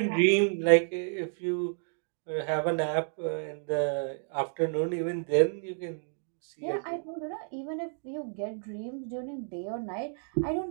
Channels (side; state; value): left; silent; 57 dB below the other